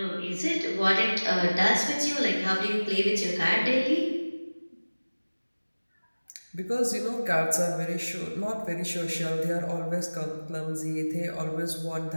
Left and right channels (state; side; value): inverted; both; correlation -1.00